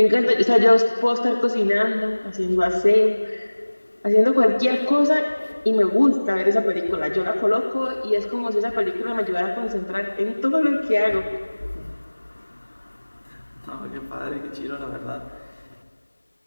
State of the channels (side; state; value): both; inverted; correlation -1.00